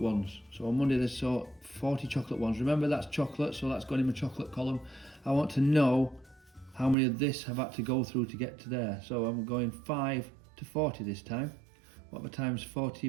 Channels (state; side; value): drops out; left; at 7.0 s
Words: So on Monday they sold 40 chocolate ones. Remember, that's chocolate, so that's gone in my chocolate column. I want to know how many of this have had to go through to get to there. So I'm going 5 to 40 this time. What am I times